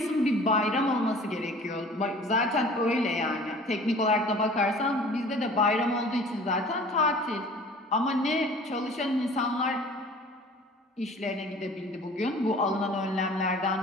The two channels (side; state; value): both; normal; correlation 0.46